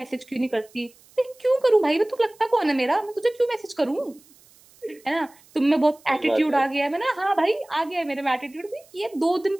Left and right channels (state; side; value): noise; right; hiss, 28 dB below the sound